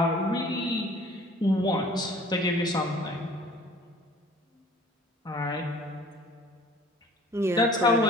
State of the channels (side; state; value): both; normal; correlation 0.50